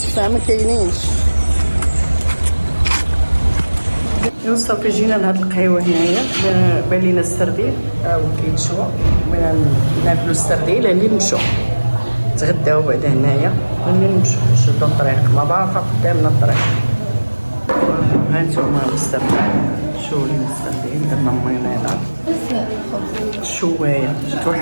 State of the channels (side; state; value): both; inverted; correlation -1.00